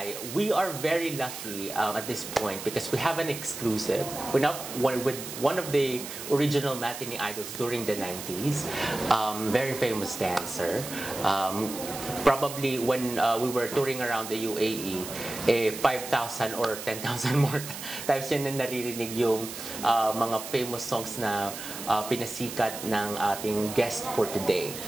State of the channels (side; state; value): right; noise; hiss, 9 dB below the sound